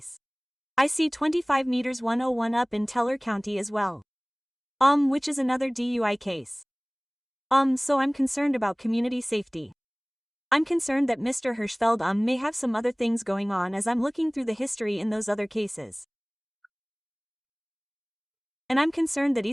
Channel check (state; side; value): identical; both; correlation 1.00